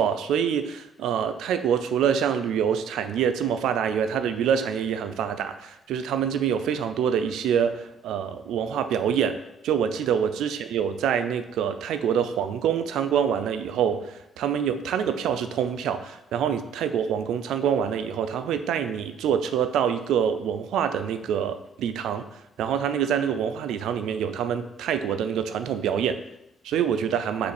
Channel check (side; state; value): left; quieter; 7.8 dB